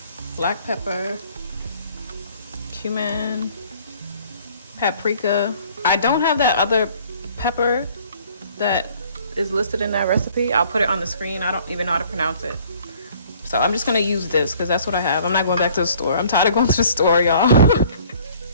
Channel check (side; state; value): both; inverted; correlation -0.56